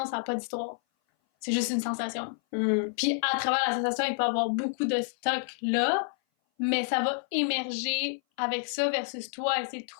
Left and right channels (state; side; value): silent; right; 57 dB below the other